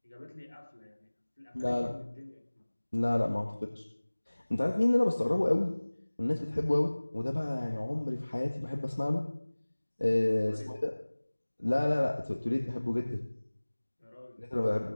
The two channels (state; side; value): inverted; both; correlation -1.00